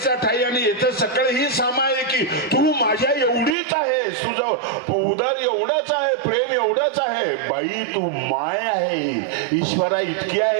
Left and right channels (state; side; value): drops out; left; at 3.6 s